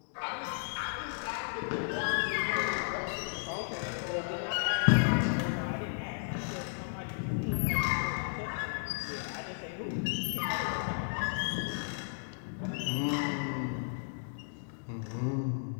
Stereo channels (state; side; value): silent; right; digital silence